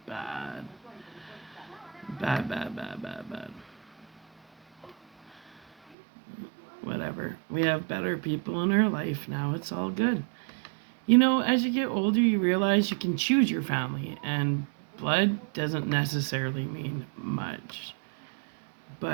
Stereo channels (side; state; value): left; drops out; at 6.0 s